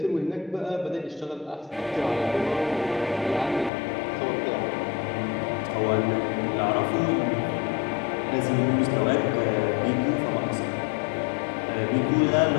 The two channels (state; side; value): drops out; right; at 3.7 s